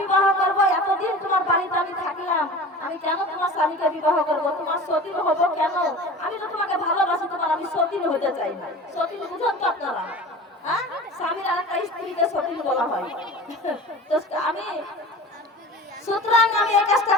বিবাহ করবো? এতদিন তোমার বাড়িতে আমি থাকলাম, আমি কেন তোমার স্বামীকে বিবাহ করবো? তোমার সতীন হবো কেন? আমি তো তোমাকে ভালোবাসি, তোমার আমি সতীন হতে চাই না। সতীন বুঝেন তো আপনারা? হ্যাঁ, স্বামীর আরেকটা স্ত্রীকে সতীন বলা হয়। তো আমি সুতরাং আমি এই কাজটা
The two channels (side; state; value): both; normal; correlation 0.37